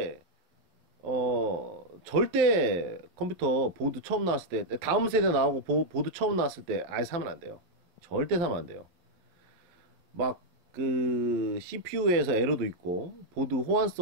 절대 컴퓨터 보드 처음 나왔을 때, 다음 세대 나오고 보드 처음 나왔을 때 아예 사면 안 돼요. 절대 사면 안 돼요. 막 그 CPU에서 에러도 있고 보드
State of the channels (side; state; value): left; late; 12 ms